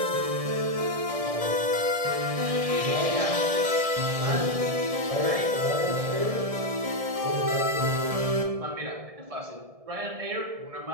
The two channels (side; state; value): left; late; 1.7 ms